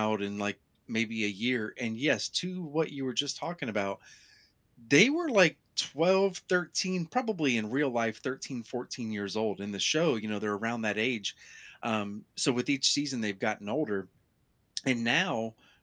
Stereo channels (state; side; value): identical; both; correlation 1.00